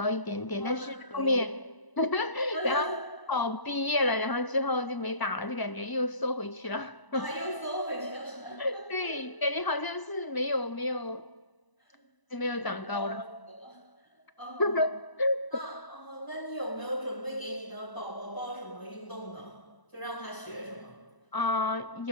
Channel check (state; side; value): late; right; 1.0 ms